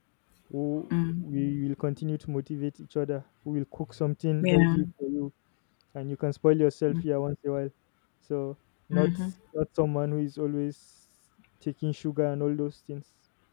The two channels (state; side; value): silent; right; digital silence